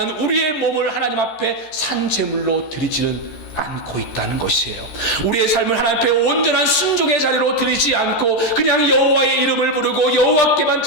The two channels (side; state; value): right; late; 13 ms